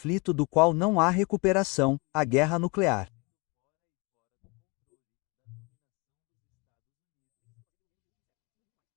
do qual não há recuperação, a guerra nuclear.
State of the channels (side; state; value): right; quieter; 29.0 dB